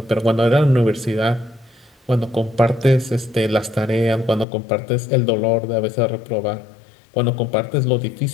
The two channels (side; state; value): right; drops out; at 4.5 s